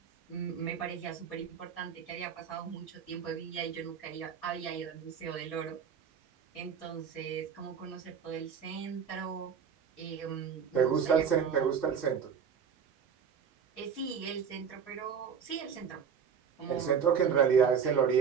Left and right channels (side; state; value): left; quieter; 7.1 dB